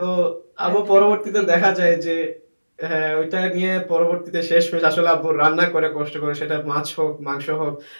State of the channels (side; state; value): both; inverted; correlation -1.00